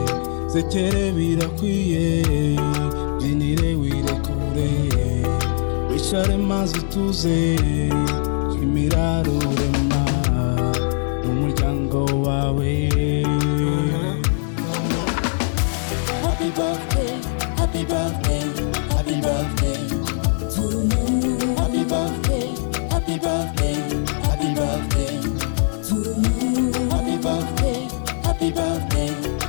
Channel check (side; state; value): right; silent; 65 dB below the other